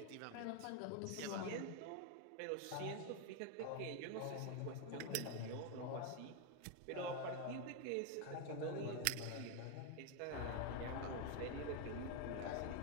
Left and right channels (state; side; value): different; both; correlation 0.01